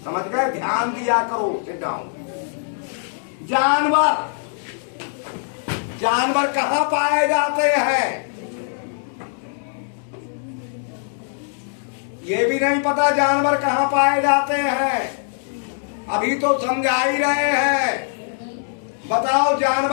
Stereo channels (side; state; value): right; silent; digital silence